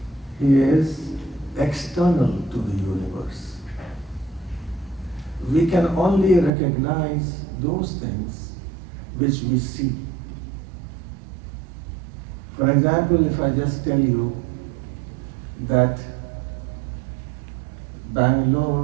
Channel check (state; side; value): drops out; left; at 6.5 s